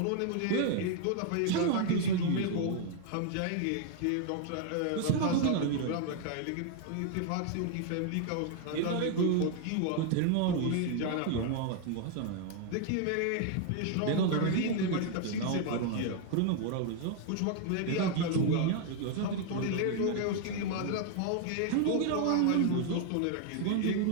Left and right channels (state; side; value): different; both; correlation 0.00